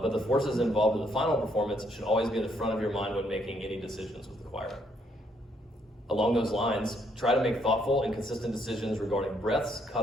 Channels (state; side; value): normal; both; correlation 0.71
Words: the forces involved in the final performance should always be in the front of your mind when making any decisions with the choir. Along those lines, try to make thoughtful and consistent decisions regarding breaths,